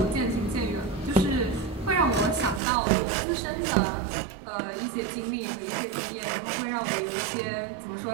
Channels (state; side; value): drops out; left; at 2.6 s